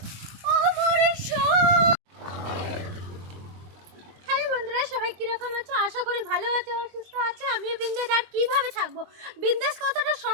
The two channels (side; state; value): left; late; 22 ms